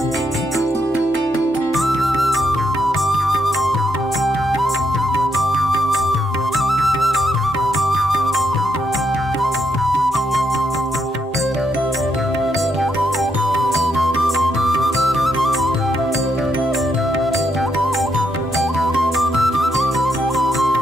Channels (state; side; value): normal; both; correlation 0.78